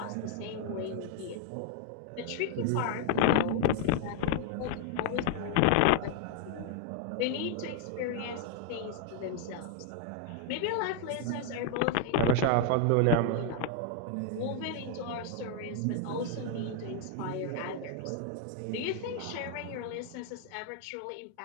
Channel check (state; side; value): different; both; correlation 0.00